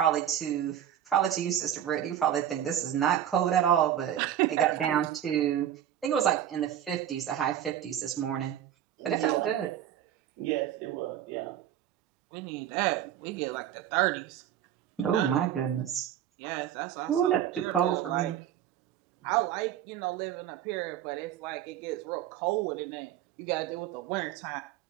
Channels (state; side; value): quieter; left; 10.7 dB